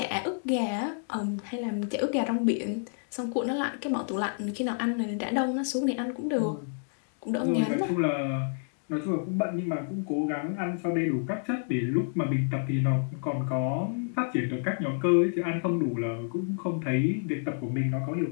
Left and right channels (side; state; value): right; silent; digital silence